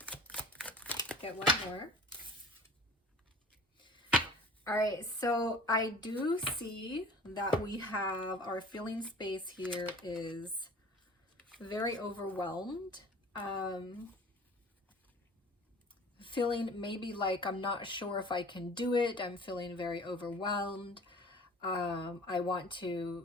get one more. All right, so I do see that we have our feeling space here is very overwhelmed. Feeling maybe like I'm not sure if I can do it. I'm feeling very overwhelmed. I want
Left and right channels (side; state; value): both; normal; correlation 0.44